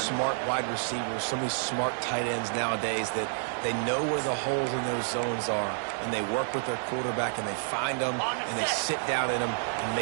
wide receivers, so many smart tight ends nowadays that they know where the holes in those zones are, and they work with their quarterback, and they find them, and they sit down in them and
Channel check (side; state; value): left; silent; digital silence